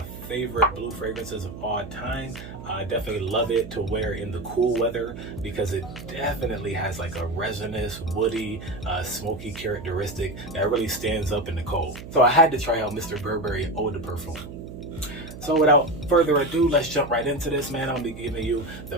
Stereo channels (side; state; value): right; noise; hum, 12 dB below the sound